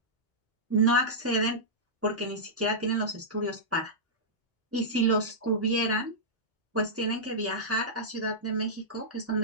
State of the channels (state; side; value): normal; both; correlation -0.13